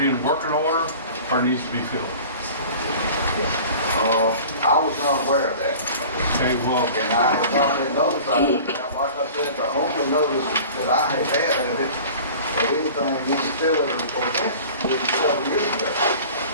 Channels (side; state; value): both; inverted; correlation -0.42